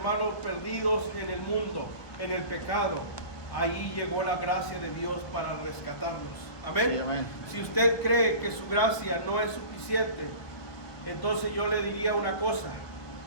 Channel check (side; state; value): right; late; 1.2 ms